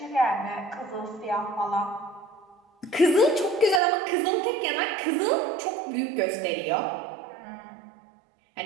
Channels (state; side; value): drops out; left; at 3.8 s